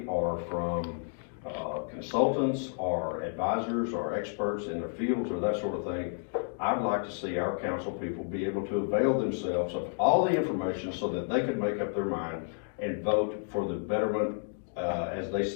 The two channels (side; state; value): right; silent; digital silence